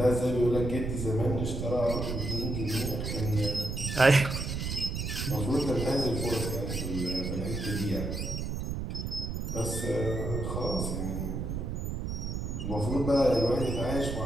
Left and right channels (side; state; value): right; noise; rumble, 3 dB below the sound